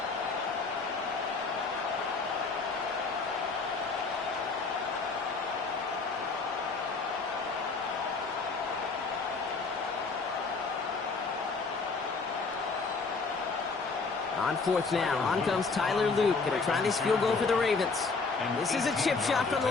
On 4th now, on comes Tyler Luke. Gonna try this field goal for the Ravens. This is a chip shot from the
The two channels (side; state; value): right; quieter; 4.3 dB